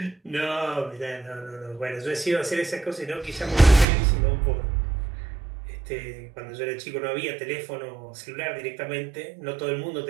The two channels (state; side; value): drops out; left; at 3.9 s